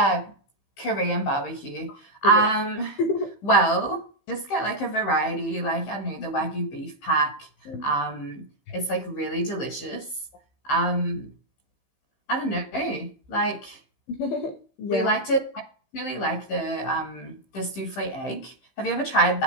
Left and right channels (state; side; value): late; right; 15 ms